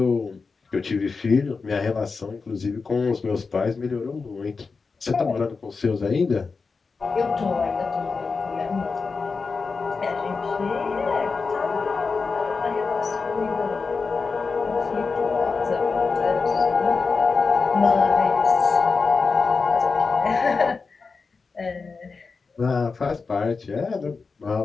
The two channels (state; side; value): quieter; right; 4.6 dB